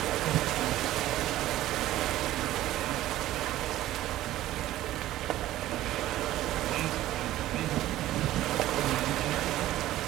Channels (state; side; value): quieter; left; 14.7 dB